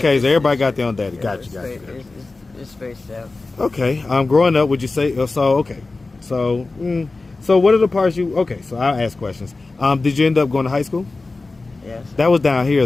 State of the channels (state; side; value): quieter; right; 3.5 dB